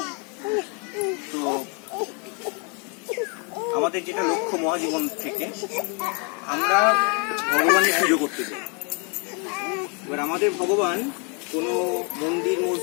তো আমাদের যেটা লক্ষ্য মহাজীবন থেকে আমরা ভগবানের পুজো করতে চাই। এবার আমাদের ভগবান কোনো মন্দির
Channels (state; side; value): quieter; right; 35.9 dB